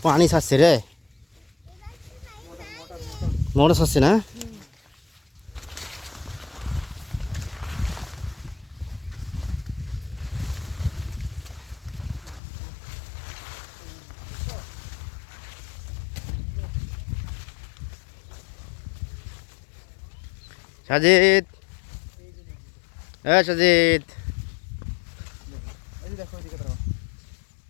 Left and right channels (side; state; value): right; drops out; at 12.4 s